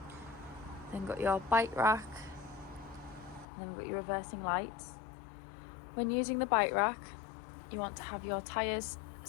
then got your bike rack, and then we've got your reversing lights. When using the bike rack, you want to have your tyres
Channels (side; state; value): right; drops out; at 3.5 s